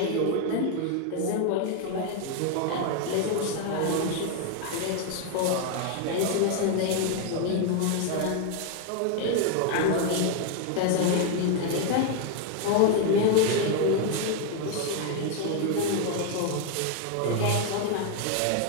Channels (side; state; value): both; different; correlation 0.01